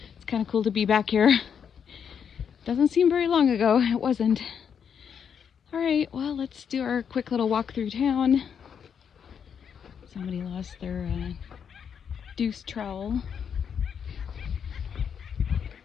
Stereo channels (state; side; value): quieter; right; 7.5 dB